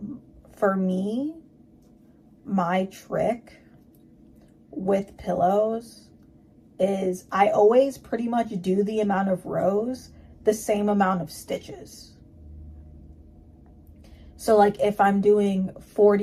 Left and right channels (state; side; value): identical; both; correlation 1.00